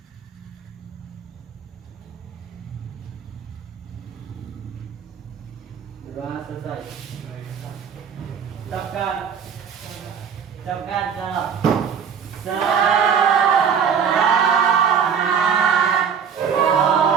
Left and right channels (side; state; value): left; quieter; 7.2 dB